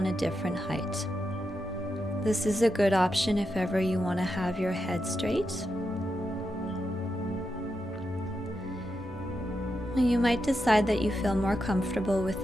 a different height. This is a good option if ever you want to have your head straight. You might decide that you feel more comfortable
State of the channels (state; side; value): normal; both; correlation 0.86